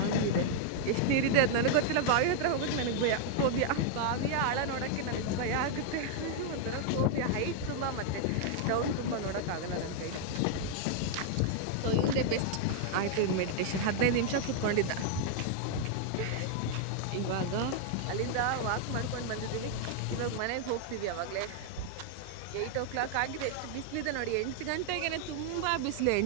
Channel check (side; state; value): both; different; correlation 0.00